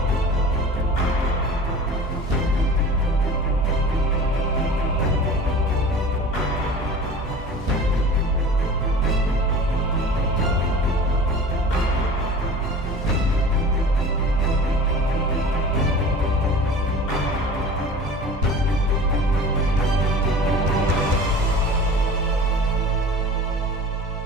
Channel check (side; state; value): both; normal; correlation 0.39